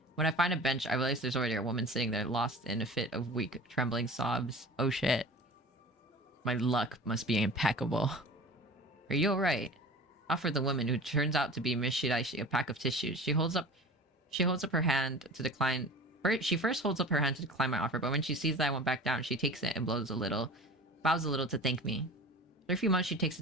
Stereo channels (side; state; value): both; normal; correlation 0.38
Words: When I find a bench, I realize there's already a woman sitting there, lost in a fit of weak, trembling sobs. Oh shit. My luck must be impeccable. Are you alright? Offer the woman, who turns out to be Miss Shiraishi, a pack of tissues. She holds up her hand to decline. She first holds up her hand to decline my offer, but when she sees that I won't back down, she takes it and bows a little to thank me. After a few months, she takes